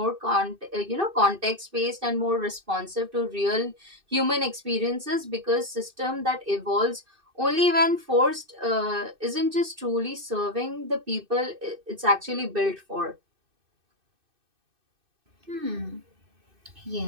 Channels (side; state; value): left; late; 2.6 ms